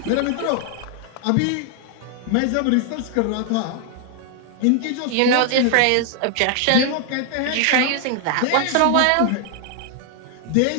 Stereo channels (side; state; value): both; different; correlation 0.00